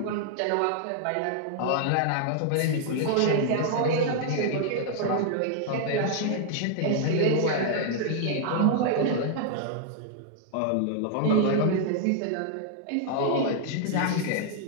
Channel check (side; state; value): both; different; correlation 0.00